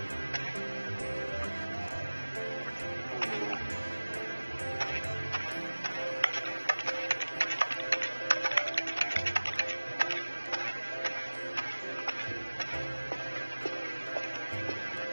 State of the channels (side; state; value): both; inverted; correlation -1.00